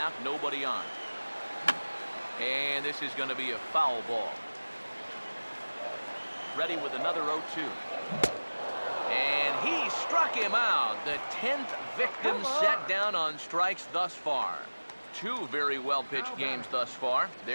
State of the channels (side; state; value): both; inverted; correlation -1.00